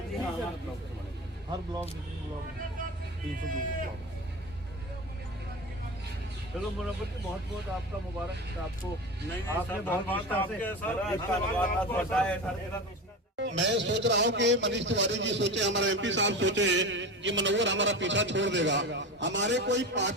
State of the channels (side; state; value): both; normal; correlation 0.26